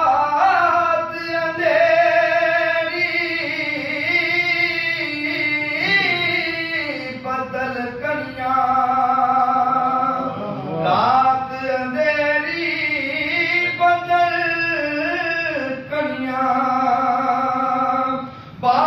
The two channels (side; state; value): both; identical; correlation 1.00